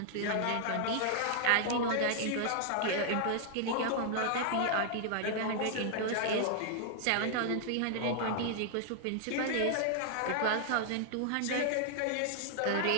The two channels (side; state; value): both; different; correlation 0.00